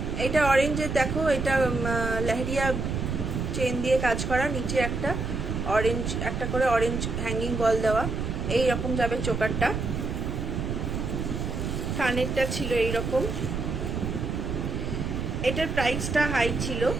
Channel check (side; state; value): right; noise; rumble, 3 dB below the sound